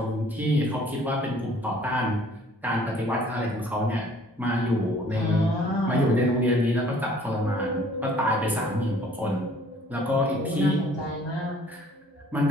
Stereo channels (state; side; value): normal; both; correlation 0.55